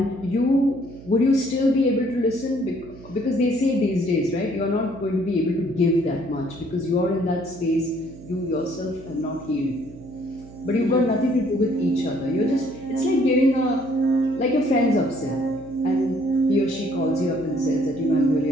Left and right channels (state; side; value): noise; right; hum, 18 dB below the sound